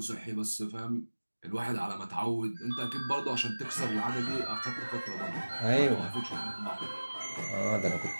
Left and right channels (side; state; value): both; inverted; correlation -1.00